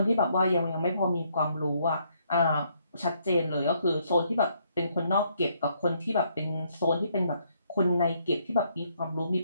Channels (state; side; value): inverted; both; correlation -0.71